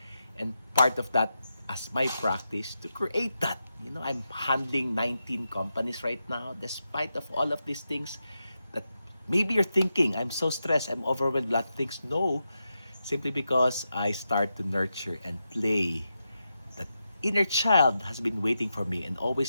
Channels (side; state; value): both; inverted; correlation -0.88